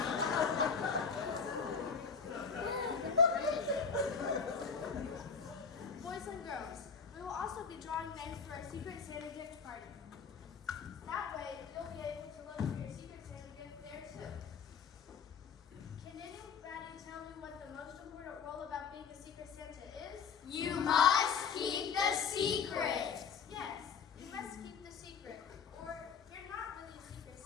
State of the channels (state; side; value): quieter; right; 6.1 dB